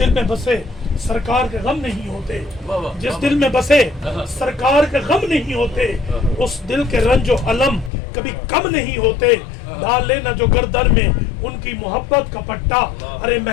में बसे सरकार के गम नहीं होते, जिस दिल में बसे सरकार के गम नहीं होते, उस दिल के रंजो अलम कभी कम नहीं होते। डाल लेना जो गर्दन में उनकी मोहब्बत का पट्टा, अरे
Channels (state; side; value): drops out; right; at 7.9 s